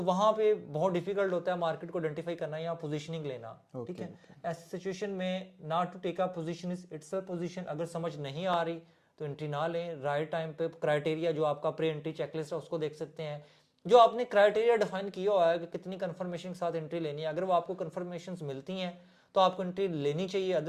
वहाँ पे बहुत डिफिकल्ट होता है मार्केट को आइडेंटिफाई करना या पोजीशनिंग लेना, ठीक है। ऐसी सिचुएशन में not to take a position is itself position, अगर समझ नहीं आ रही तो एंट्री ना लें। राइट टाइम पे क्राइटेरिया जो आपका प्री एंट्री चेकलिस्ट है उसको देख सकते हैं, जो आपने क्राइटेरिया डिफाइन किया हुआ है कि कितनी कंफर्मेशन के साथ एंट्री लेनी है। अगर वो आपको कंफर्मेशन मिलती हैं तो आपको एंट्री लेनी चाहिए,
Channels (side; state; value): both; identical; correlation 1.00